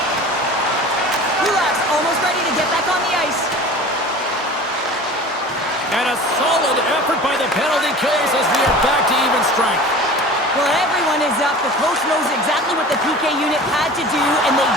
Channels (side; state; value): both; normal; correlation 0.39